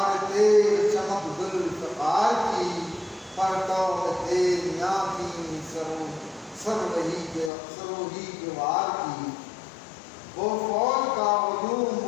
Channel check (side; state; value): right; drops out; at 7.5 s